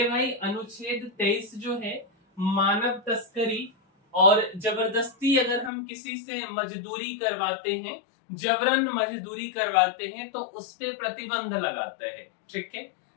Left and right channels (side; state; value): right; drops out; at 5.7 s